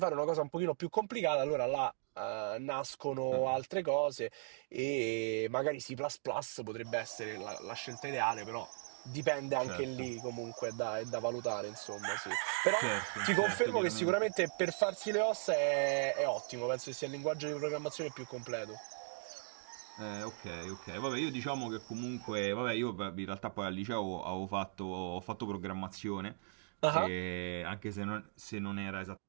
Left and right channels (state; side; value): silent; left; digital silence